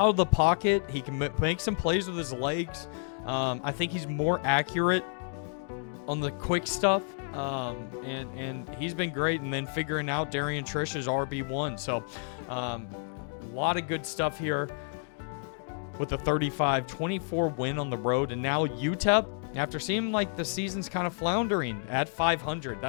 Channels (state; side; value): silent; right; 58 dB below the other